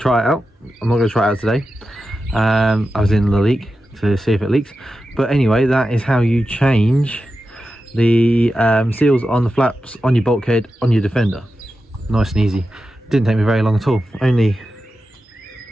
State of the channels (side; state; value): both; normal; correlation 0.91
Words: it out. I'm not going to try it out today. I was in the leak to see if it leaks. But anyway, that is how you change the seals on the flaps on your bulkhead on your Defender. Nice and easy. Didn't take me very long at all. Only